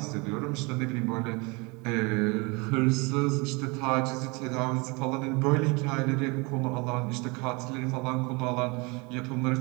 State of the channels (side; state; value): left; quieter; 28.0 dB